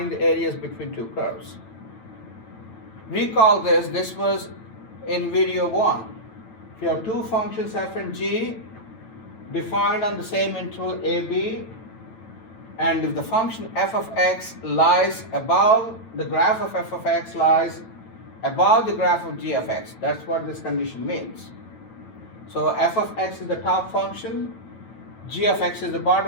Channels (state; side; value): late; right; 8.9 ms